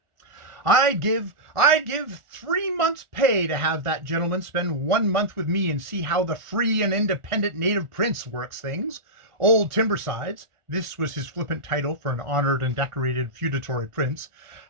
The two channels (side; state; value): left; late; 1.4 ms